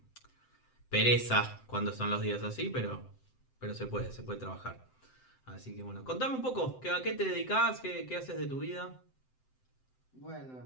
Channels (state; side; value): late; right; 7.8 ms